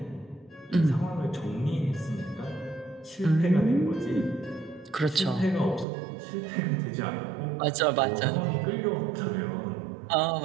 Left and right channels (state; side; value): drops out; left; at 5.9 s